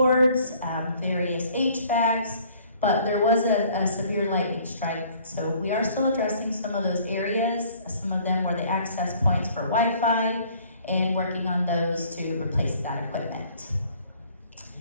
various HVACs, but there was a severe lightning strike. So we are still addressing some of those areas. Some of them were the access points for Wi-Fi, and working on those to replace that equipment.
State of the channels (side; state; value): both; inverted; correlation -0.56